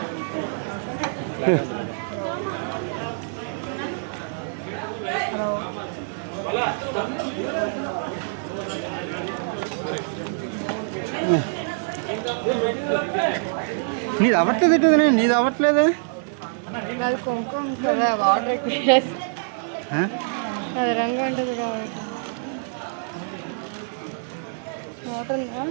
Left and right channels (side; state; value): left; silent; digital silence